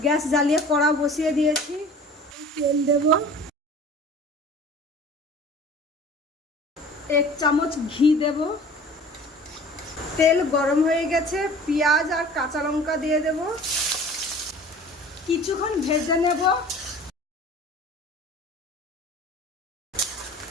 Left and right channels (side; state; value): both; normal; correlation 0.44